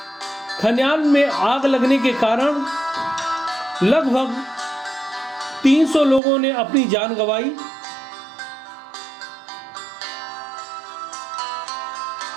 खलिहान में आग लगने के कारण लगभग 300 लोगों ने अपनी जान गंवाई।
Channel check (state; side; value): drops out; left; at 6.2 s